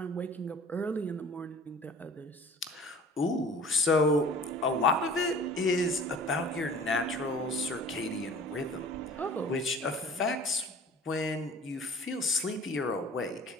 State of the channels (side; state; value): both; normal; correlation 0.45